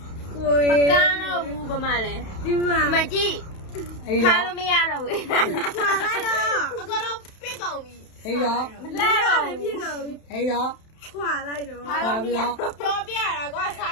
မကားတော့ဘူးဘာမှလဲဒီမှာကြည့် အဲ့ ခါ တော့ လို့မရတော့ဘူးခွာလိုက်တော့အကတော့ပြစ်ကုန်ပြီ အဲ့တော့ မလဲတော့ပြစ်ကုန်ပြီ အဲ့တော့ ခွာလိုက်တော့ ပါပြီးတော့ ပြောပြတာကွာစာ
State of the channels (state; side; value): late; right; 31 ms